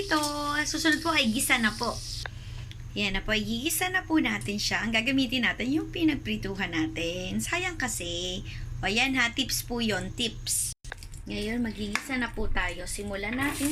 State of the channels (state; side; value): identical; both; correlation 1.00